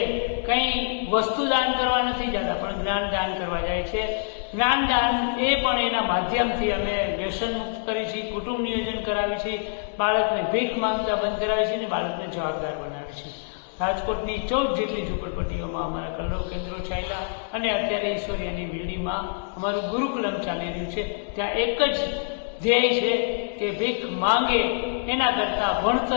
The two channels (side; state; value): right; silent; digital silence